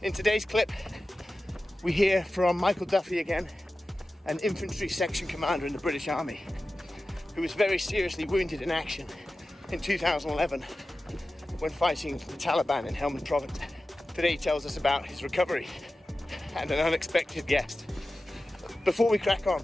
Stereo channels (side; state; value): both; normal; correlation 0.95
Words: In today's clip, we hear from Michael Duffy again, an infantry section commander in the British Army, who was very seriously wounded in action in 2011 when fighting the Taliban in Helmand Province. Today he tells us about his recovery and an unexpected guest. Before we crack on,